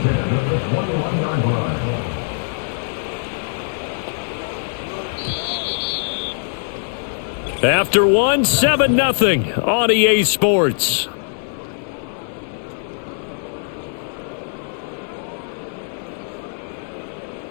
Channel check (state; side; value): silent; right; 65 dB below the other